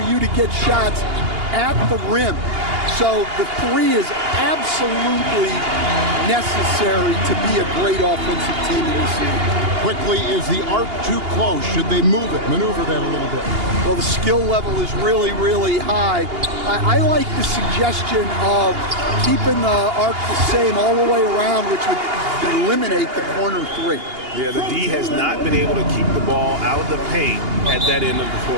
you to get shots at the rim. So the three is absolutely necessary to be a great offensive team in this league. Quickly, is the arc too close? Should they move it, maneuver that a little bit? Well, the skill level is really, really high. I like the suggestion of keeping the arc the same all the way around, which would eliminate the corner three. Yeah, the D has not been able to keep the ball out of the paint at that end of the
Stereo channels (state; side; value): late; left; 2.8 ms